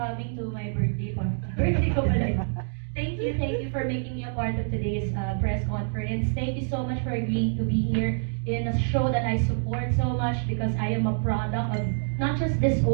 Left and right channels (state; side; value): silent; left; digital silence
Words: to my birthday party. Birthday ko pala yun. Thank you for making me a part of today's press conference. Thank you so much for agreeing to be here in a show that I support so much because I am a product of not just this